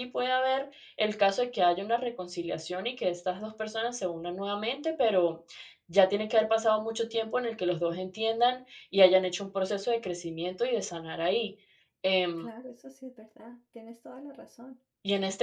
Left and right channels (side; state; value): both; identical; correlation 1.00